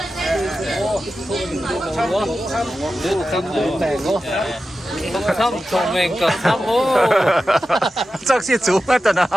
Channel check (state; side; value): normal; both; correlation 0.92